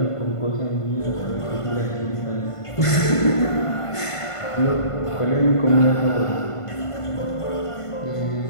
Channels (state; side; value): late; right; 1.5 ms